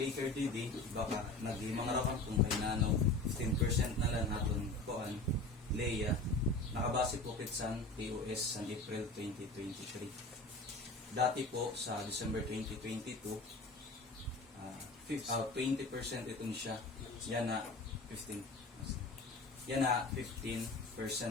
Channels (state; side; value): quieter; right; 3.0 dB